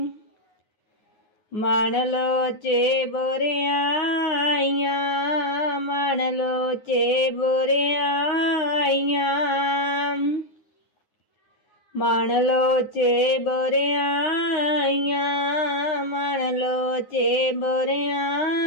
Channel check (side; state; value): right; late; 9.5 ms